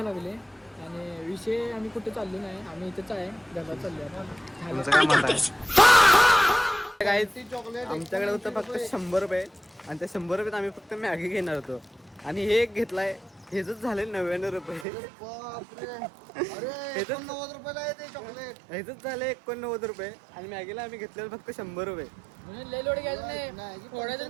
लागले आणि विषय आम्ही कुठे चाललो नाही. आम्ही इथेच आहे घरात चाललो आमच्याकडे होतं फक्त 100 रुपये आणि त्या 100 रुपयात आम्ही फक्त मॅगी घेणार होतो आणि हे एक घेतलाय. हेच झाले 99 रुपये. हेच झाले 89 रुपये आणि मॅगीला आम्ही घेतलेलं फक्त 100 रुपये. लय लोड घ्यायचं नाही, थोड्या जण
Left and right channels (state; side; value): drops out; left; at 14.9 s